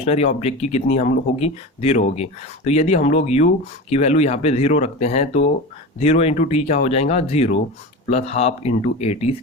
ऑब्जेक्ट की कितनी हम लोग होगी, 0 होगी। तो यदि हम लोग u की वैल्यू यहाँ पे 0 रखते हैं तो 0 इंटू टी क्या हो जाएगा, 0 plus half into A T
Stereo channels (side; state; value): both; normal; correlation 0.27